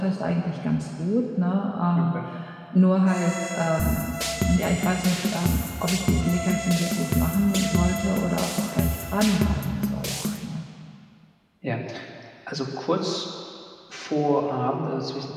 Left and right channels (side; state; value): both; identical; correlation 1.00